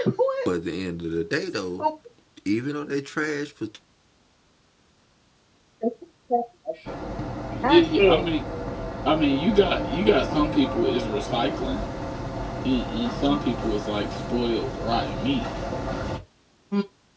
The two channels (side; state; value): both; identical; correlation 1.00